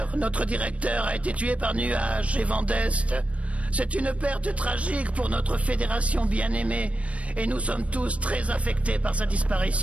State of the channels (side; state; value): left; late; 0.064 ms